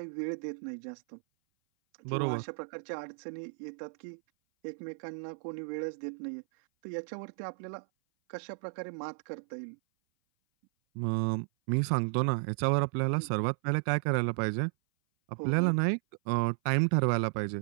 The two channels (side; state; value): left; silent; 56 dB below the other